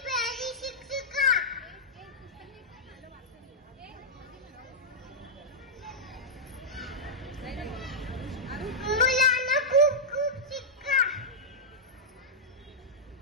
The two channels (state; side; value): normal; both; correlation -0.11